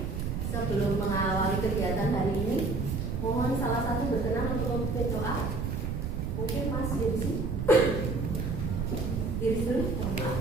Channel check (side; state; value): right; noise; rumble, 2 dB below the sound